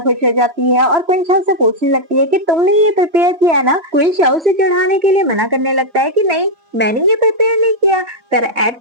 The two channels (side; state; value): left; late; 3.0 ms